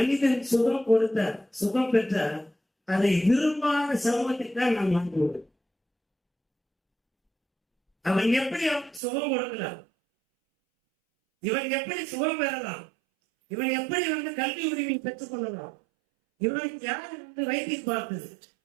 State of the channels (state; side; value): drops out; left; at 9.0 s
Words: சுகம் பெற்றார், அதை விரும்பாத சமூகத்துக்கு தான் நாம் வாங்குவோம். அவன் எப்படி சுகம் கொடுக்கலாம், இவன் எப்படி சுகம் பெறலாம், இவன் எப்படி கல்வி உரிமை பெற்றுக் கொள்ளலாம், இவன் யார் வைத்தியம் பார்த்தது,